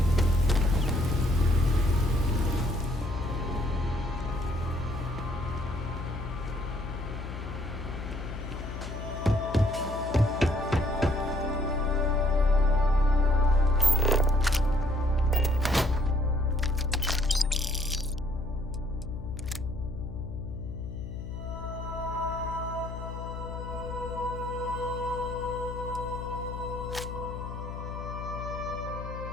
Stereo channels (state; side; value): noise; left; hum, 7 dB below the sound